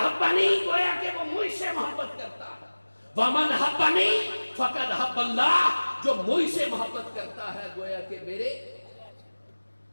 گویا کہ وہ مجھ سے محبت کرتا ہے، ومن احبنی فقد احب اللہ، جو مجھ سے محبت کرتا ہے گویا کہ میرے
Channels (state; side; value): inverted; both; correlation -1.00